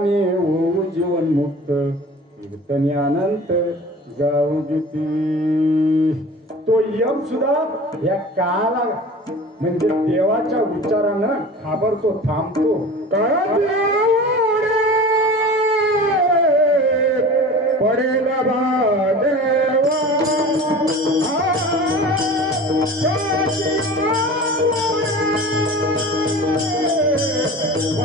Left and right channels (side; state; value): both; normal; correlation 0.38